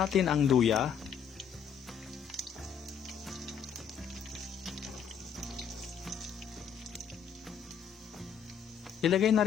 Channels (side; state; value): right; quieter; 7.5 dB